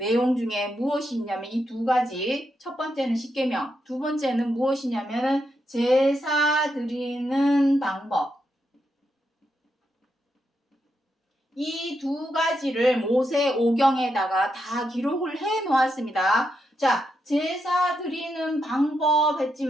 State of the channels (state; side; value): normal; both; correlation 0.83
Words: 중에 무엇이 있냐면 이 두 가지. 첫 번째는 10계명, 두 번째는 무엇이냐면 제사 드리는 방법. 이 두 가지를 모세오경에다가 다 기록을 해 놓았습니다. 자, 제사 드리는 방법